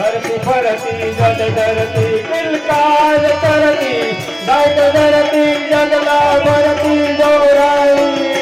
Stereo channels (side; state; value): both; identical; correlation 1.00